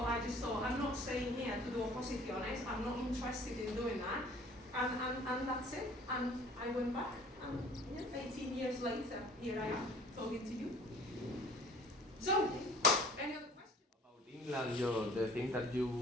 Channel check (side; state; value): both; normal; correlation 0.51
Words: I just thought, I'm not staying here to do oposiciones. I'm not interested in doing that. And that's it. And I went back, and 18 years later, here I am talking to you. So, any other questions? About England, the thing that you